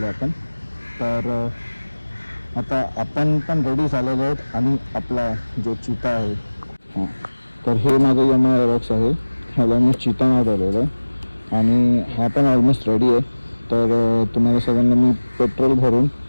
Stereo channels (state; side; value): inverted; both; correlation -1.00